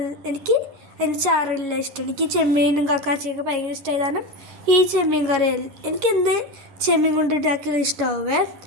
എനിക്ക് അതിന് ചാറെല്ലാം ഇഷ്ടം. എനിക്ക് ചെമ്മീനും കക്കാച്ചിയൊക്കെ ഭയങ്കര ഇഷ്ടമായി. കാരണം ഈ ചെമ്മീൻ കറി എനിക്ക് എന്ത് ചെമ്മീൻ കൊണ്ട് ഉണ്ടാക്കിയാലും ഇഷ്ടമാവേ.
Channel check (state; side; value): late; left; 10 ms